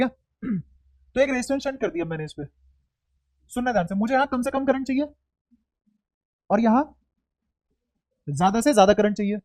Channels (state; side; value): identical; both; correlation 1.00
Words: तो एक रेजिस्टेंस शंट कर दिया मैंने इस पे। सुनना ध्यान से, मुझे यहां कम से कम करंट चाहिए और यहां ज्यादा से ज्यादा करंट चाहिए।